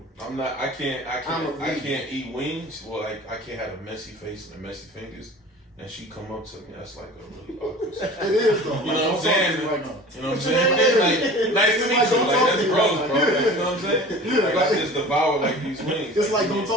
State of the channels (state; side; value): normal; both; correlation 0.41